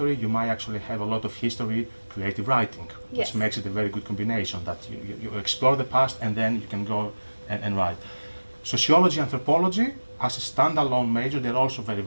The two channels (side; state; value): both; inverted; correlation -1.00